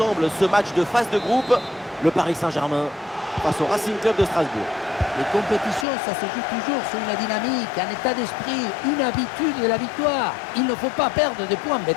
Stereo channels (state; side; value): drops out; right; at 5.9 s